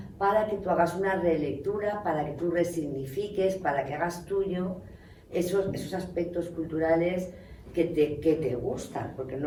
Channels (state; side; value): identical; both; correlation 1.00